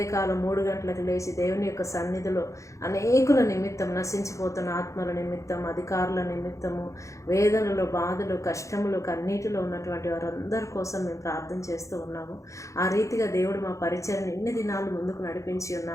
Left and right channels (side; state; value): right; late; 0.15 ms